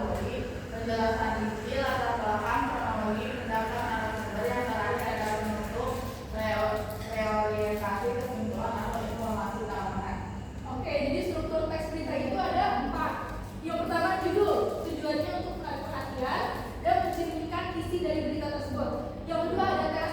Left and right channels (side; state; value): both; identical; correlation 1.00